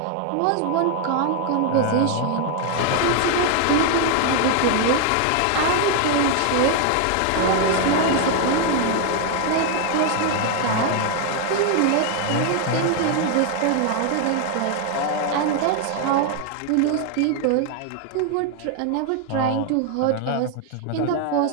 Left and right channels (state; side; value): different; both; correlation 0.00